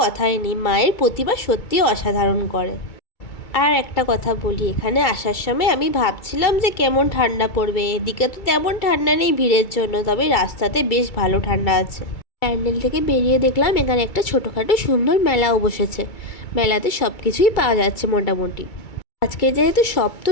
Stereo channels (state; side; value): late; right; 2.3 ms